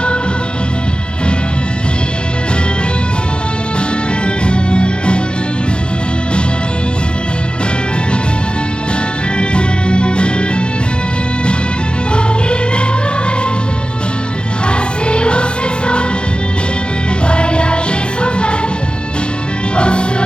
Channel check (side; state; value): right; late; 0.052 ms